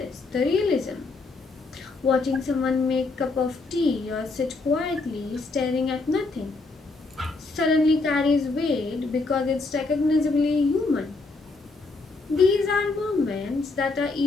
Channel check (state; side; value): quieter; right; 3.6 dB